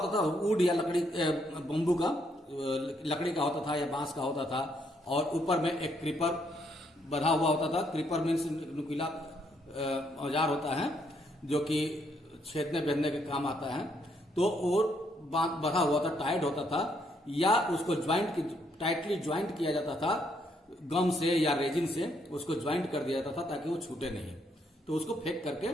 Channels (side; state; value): both; normal; correlation 0.73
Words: था, वुड या लकड़ी, बम्बू का, लकड़ी का होता था या बांस का होता था, और ऊपर में एक क्रीपर बधा हुआ होता था। क्रीपर मीन्स नुकीला औजार होता है जो कि छेदने बेदने के काम आता है, तो और बधा हुआ था, टाइट होता था, या उसको टाइटली ज्वाइंट किया जाता था गम से या रेजिन से, उसको ज्वाइंट कर दिया जाता था ताकि वो छूटे नहीं। तो उसको फेंक करके